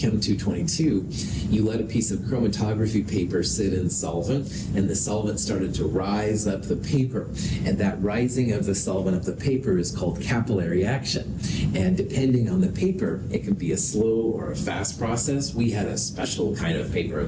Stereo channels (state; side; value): identical; both; correlation 1.00